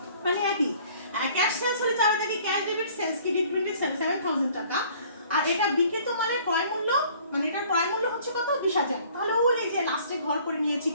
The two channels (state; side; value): inverted; both; correlation -0.54